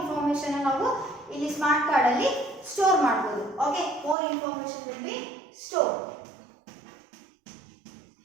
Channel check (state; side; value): drops out; left; at 4.2 s